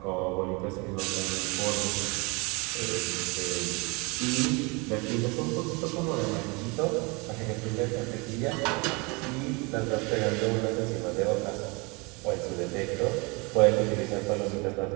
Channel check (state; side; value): quieter; left; 28.5 dB